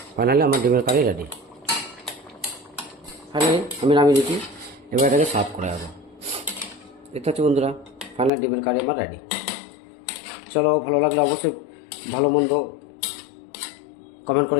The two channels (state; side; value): drops out; right; at 8.3 s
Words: ফাইনালি আমার ডিমের কারি রেডি। ফাইনালি আমি নামিয়ে দিচ্ছি। এবার এটাকে সার্ভ করে দেবো। দেখতে পাচ্ছি বন্ধুরা, ফাইনালি ডিমের কারি আমার রেডি। চলো, ভালো লাগলে অবশ্যই ভালো মন্দ কমেন্ট